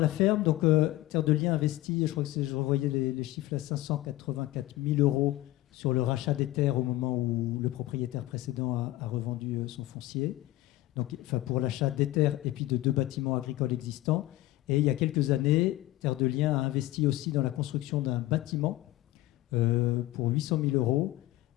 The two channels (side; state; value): right; quieter; 16.8 dB